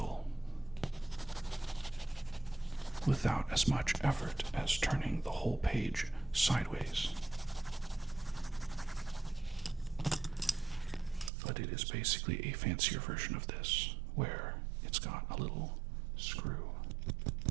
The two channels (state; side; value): drops out; left; at 11.3 s